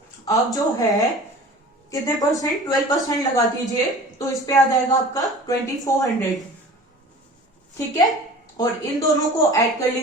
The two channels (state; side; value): normal; both; correlation 0.41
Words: आप जो है कितने परसेंट? 12% लगा दीजिए तो इस पे आ जाएगा आपका 2400। ठीक है, और इन दोनों को ऐड कर